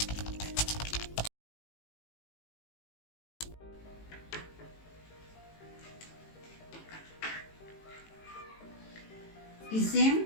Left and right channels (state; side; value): late; right; 18 ms